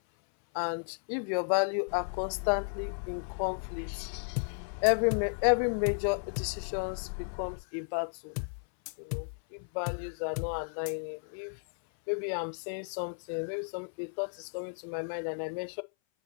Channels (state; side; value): silent; right; 56 dB below the other